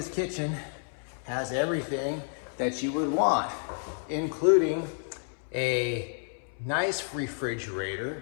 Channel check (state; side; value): silent; right; 58 dB below the other